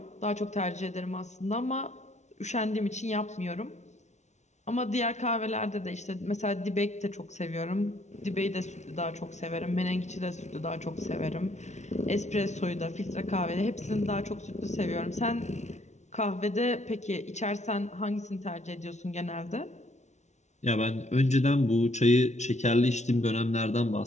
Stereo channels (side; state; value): right; late; 0.33 ms